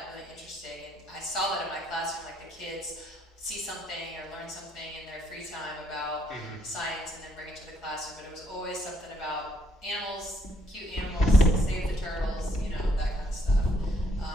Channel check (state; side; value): normal; both; correlation 0.69